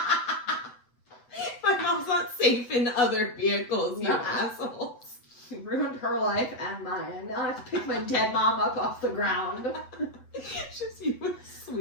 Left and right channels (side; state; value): right; late; 8.1 ms